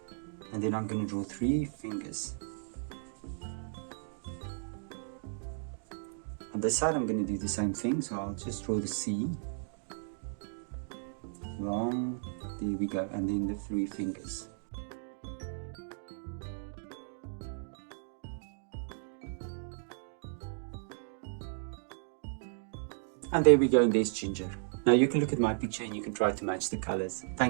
and then I'm going to draw 3 fingers. On this side I'm going to do the same thing, so I'll just draw the C, long, there we go, and then the 3 fingers. And there we go, and there's Ginger. Now you can look at my picture and you can try to match the colors.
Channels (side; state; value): left; silent; digital silence